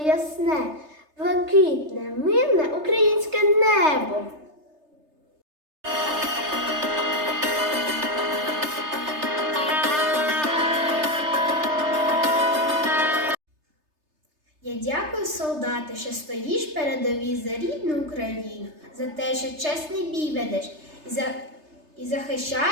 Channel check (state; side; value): late; left; 3.3 ms